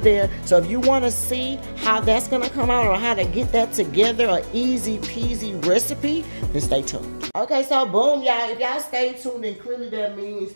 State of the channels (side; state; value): both; inverted; correlation -1.00